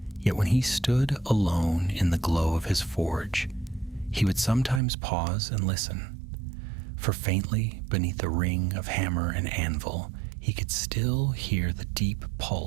Yet when he stood alone in the glow of his forge, he would sometimes pause and listen, for faintly beneath the ring of hammer and anvil, he could still hear the deep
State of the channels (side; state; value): left; drops out; at 4.8 s